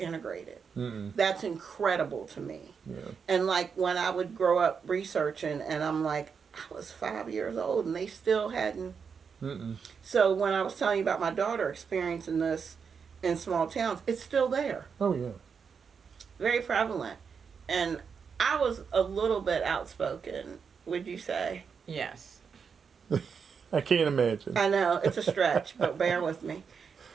That's incredible to me. And like when I would grow up researching, and I'm like, I was 5 years old and they still hadn't. So when I was telling you about my daughter experiencing this in small towns, it's still there. Oh yeah. Very prevalent. And I was a little bit outspoken, would you say? Yes. I can't imagine. I know, it's a stretch, but bear with me.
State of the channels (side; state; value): left; quieter; 6.2 dB